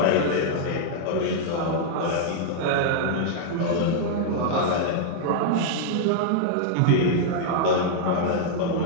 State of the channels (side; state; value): both; different; correlation -0.01